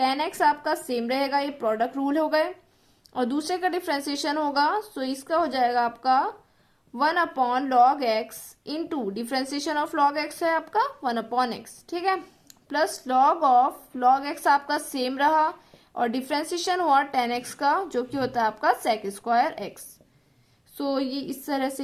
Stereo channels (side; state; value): both; identical; correlation 1.00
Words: आपका सेम रहेगा, ये प्रोडक्ट रूल हो गए। और दूसरे का डिफ्रेंसिएशन होगा, सो इसका हो जाएगा आपका 1/log x into differentiation of log x है आपका 1/x, ठीक है, plus log of log x आपका सेम रहा और डिफ्रेंसिएशन हुआ 10x का जो कि होता है आपका sec स्क्वायर x। सो ये इस तरह से